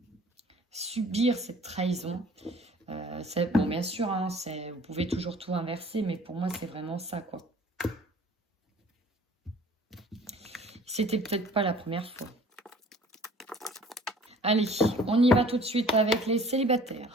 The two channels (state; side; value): normal; both; correlation 0.51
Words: subir cette trahison. Bon, bien sûr, hein, vous pouvez toujours tout inverser, mais pour moi, c'est vraiment ça, quoi. C'était peut-être pas la première fois. Allez, on y va tout de suite avec les célibataires.